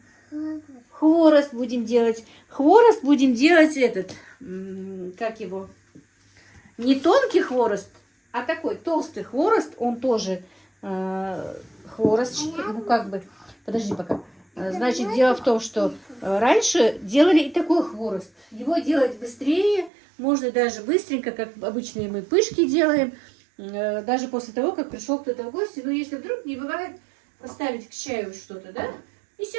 Хворост. Хворост будем делать. Хворост будем делать этот... Как его? не тонкий хворост, а такой толстый хворост. Он тоже хворост, ну как бы, подожди пока. Значит, дело в том, что раньше делали и такой хворост. Его делать быстрее, можно даже быстренько, как обычные мы пышки делаем, даже после того, как пришел кто-то в гости. Но если вдруг не бывает, поставить к чаю что-то, да? И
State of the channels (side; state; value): left; drops out; at 19.9 s